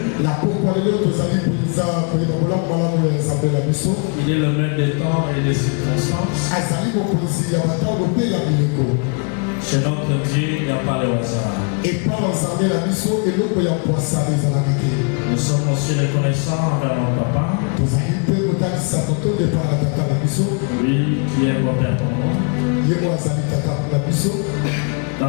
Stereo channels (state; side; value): quieter; right; 37.4 dB